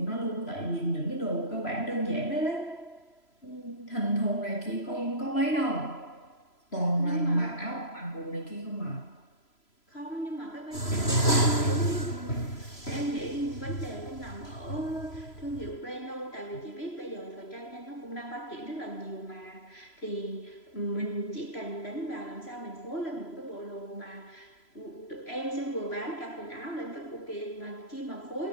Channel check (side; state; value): right; late; 3.0 ms